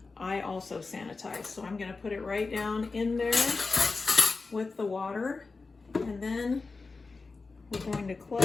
I also sanitize. So I'm gonna put it right down in there with the water. And then we're going to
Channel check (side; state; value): right; quieter; 4.1 dB